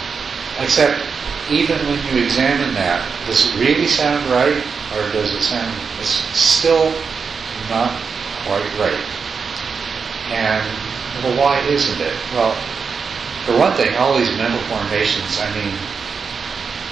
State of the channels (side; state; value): left; quieter; 5.6 dB